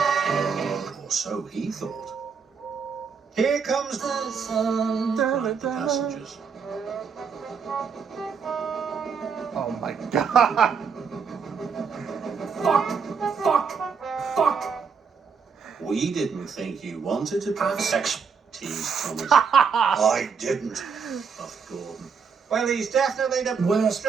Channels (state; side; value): quieter; left; 6.0 dB